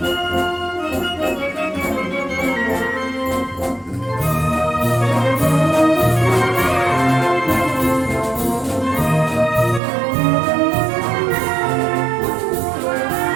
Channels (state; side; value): drops out; left; at 9.8 s